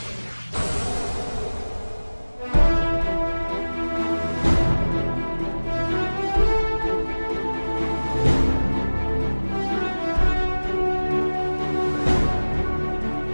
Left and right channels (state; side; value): inverted; both; correlation -1.00